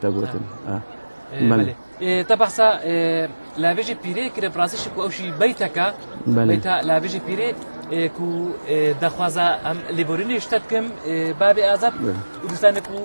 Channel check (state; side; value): inverted; both; correlation -1.00